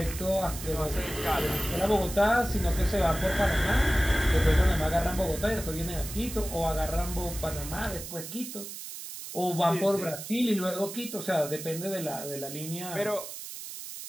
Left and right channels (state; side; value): noise; right; hiss, 10 dB below the sound